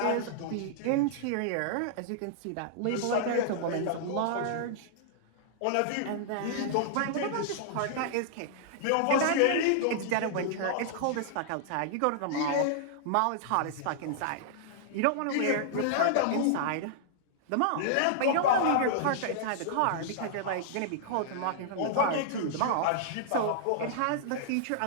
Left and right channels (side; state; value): both; different; correlation -0.01